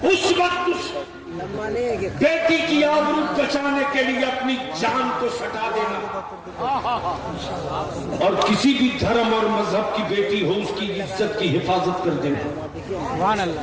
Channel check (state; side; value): identical; both; correlation 1.00